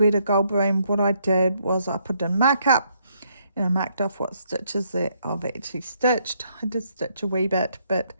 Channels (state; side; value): inverted; both; correlation -0.73